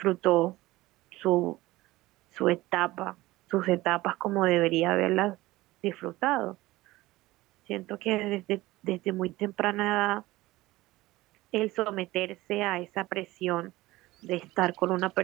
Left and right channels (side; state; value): left; quieter; 18.7 dB